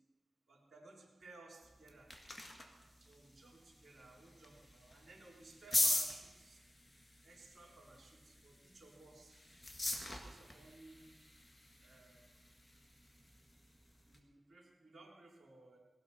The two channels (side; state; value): both; normal; correlation 0.96